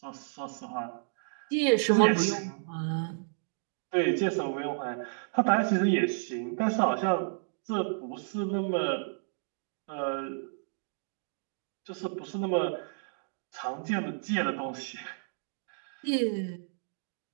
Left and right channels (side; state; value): left; silent; digital silence